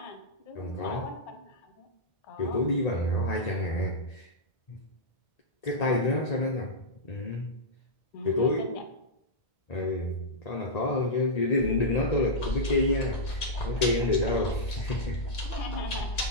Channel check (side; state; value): right; late; 2.1 ms